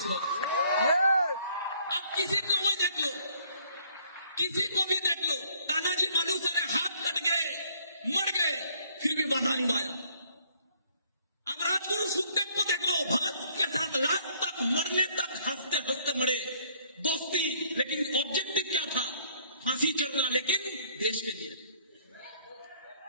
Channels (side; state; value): both; inverted; correlation -0.62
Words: अब किसी को भी देख लो, किसी को भी देख लो, तानाजी मालूसरे हाथ कट गए, मर गए, फिर भी बाधा निभाया। अब राजगुरु सुखदेव को देख लो, भगत के साथ लास्ट तक मरने तक हंसते हंसते मरे, दोस्ती, लेकिन ऑब्जेक्टिव क्या था? फांसी चढ़ना, लेकिन देश के लिए